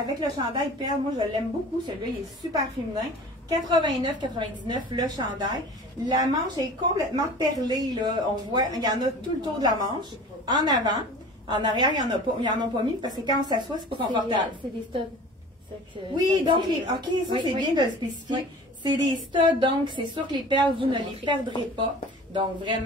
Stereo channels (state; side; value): normal; both; correlation 0.41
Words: le chandail perle. Moi, je l'aime beaucoup. Celui-là, il est super féminin. 89,99 le chandail. La manche est complètement perlée. Là. On voit, il y en a tout le tour de la manche. En avant. En arrière, il n'y en a pas mis parce que quand on s'assoit, c'est pas confortable. C'est des studs. Oui, donc, OK, ça c'est bien de le spécifier. Oui. C'est des studs, donc c'est sûr que les perles, vous ne les perdrez pas. Donc,